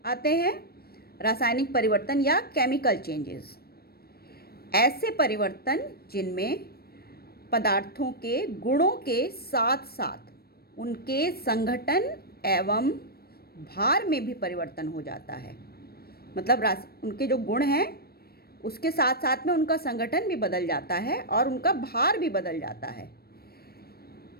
आते हैं। रासायनिक परिवर्तन या केमिकल चेंजेस, ऐसे परिवर्तन जिनमें पदार्थों के गुणों के साथ साथ उनके संघटन एवं भार में भी परिवर्तन हो जाता है। मतलब उनके जो गुण हैं उसके साथ साथ में उनका संगठन भी बदल जाता है और उनका भार भी बदल जाता है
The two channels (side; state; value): right; late; 0.45 ms